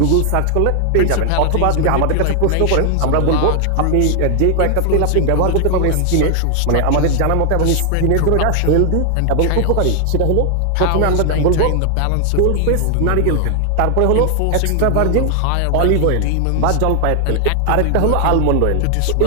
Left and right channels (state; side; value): different; both; correlation 0.00